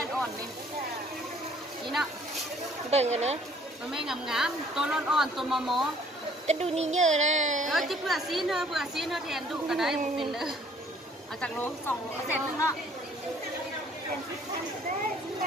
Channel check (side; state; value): both; normal; correlation 0.59